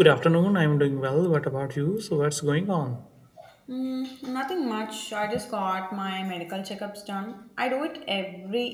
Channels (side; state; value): both; identical; correlation 1.00